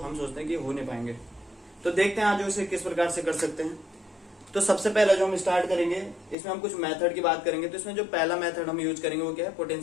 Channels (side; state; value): right; drops out; at 6.4 s